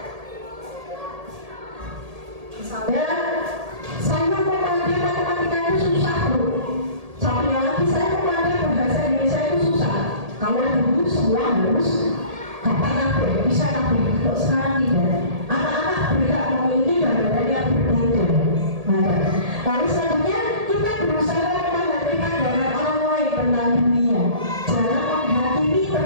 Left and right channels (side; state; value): left; late; 1.8 ms